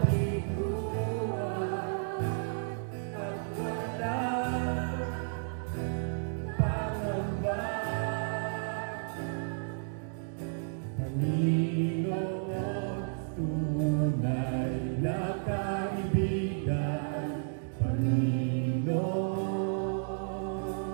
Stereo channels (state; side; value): silent; left; digital silence